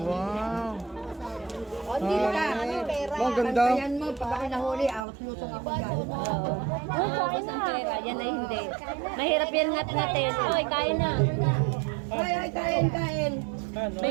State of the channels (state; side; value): drops out; left; at 5.0 s